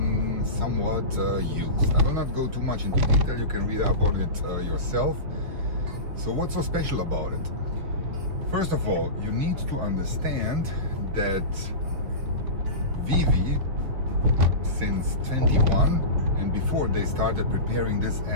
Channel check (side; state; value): left; late; 6.6 ms